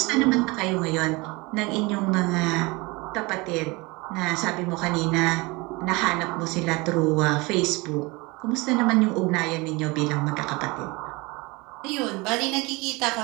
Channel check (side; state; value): left; quieter; 24.9 dB